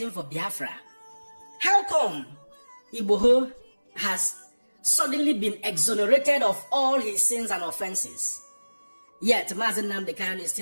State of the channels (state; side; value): inverted; both; correlation -1.00